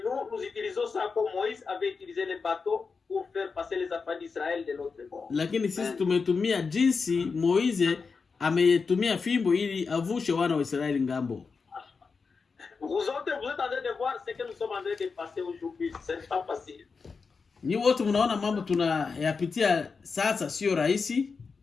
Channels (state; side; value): quieter; right; 4.9 dB